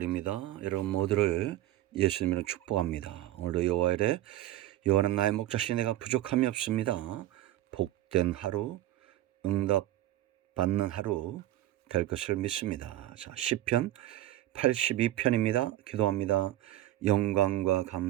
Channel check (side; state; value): left; quieter; 14.4 dB